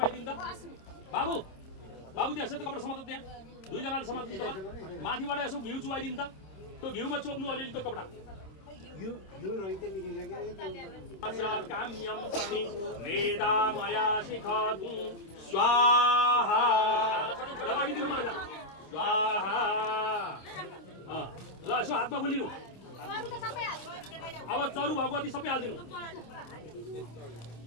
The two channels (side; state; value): right; late; 27 ms